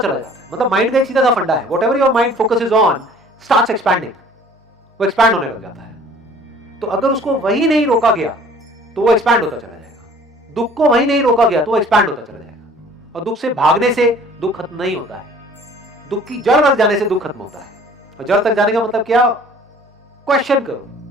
चला जाता है। मतलब माइंड का एक सीधा सा फंडा है, whatever your mind focuses on starts expanding, वो एक्सपैंड होने लग जाता है। तो अगर उसको वही नहीं रोका गया तो वो एक्सपैंड होता चला जाएगा। दुख को वही नहीं रोका गया तो वो एक्सपैंड होता चला जाएगा। और दुख से भागने से दुख खत्म नहीं होता है, दुख की जड़ तक जाने से दुख खत्म होता है। और जड़ तक जाने का मतलब क्या? क्वेश्चन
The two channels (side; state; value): both; normal; correlation 0.51